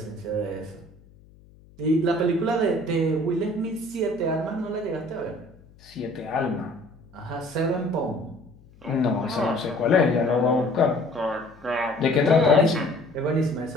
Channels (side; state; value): left; noise; hum, 26 dB below the sound